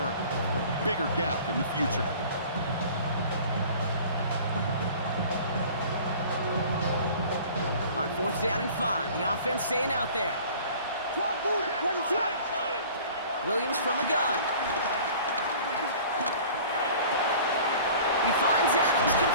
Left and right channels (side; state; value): both; inverted; correlation -0.46